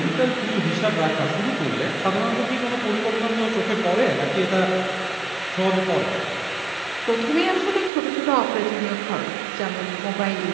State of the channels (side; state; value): left; drops out; at 7.9 s